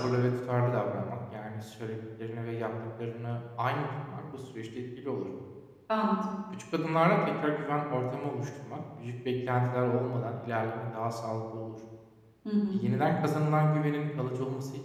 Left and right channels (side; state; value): both; identical; correlation 1.00